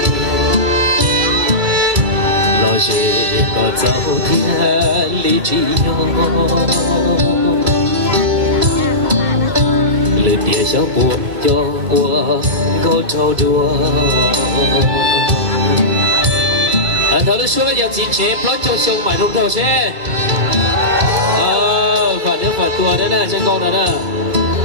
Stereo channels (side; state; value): left; late; 2.2 ms